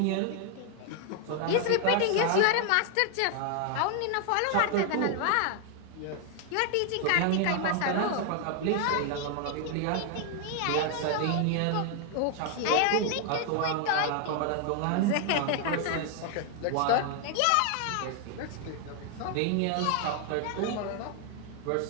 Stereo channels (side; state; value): both; different; correlation 0.00